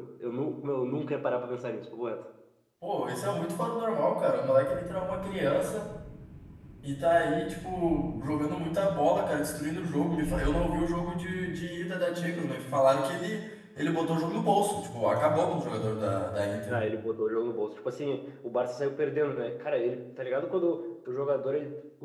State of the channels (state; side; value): identical; both; correlation 1.00